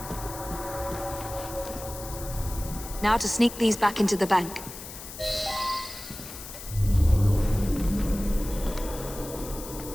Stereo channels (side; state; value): left; noise; hiss, 12 dB below the sound